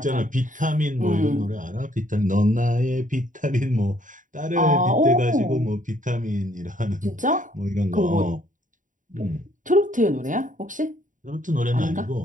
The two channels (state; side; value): late; left; 0.38 ms